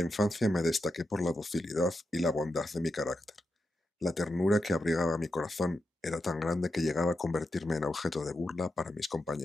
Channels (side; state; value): both; normal; correlation 0.87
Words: me destaqué por la docilidad y la bondad de mi carácter. La ternura que abrigaba mi corazón era tan grande que llegaba a convertirme en objeto de burla para mis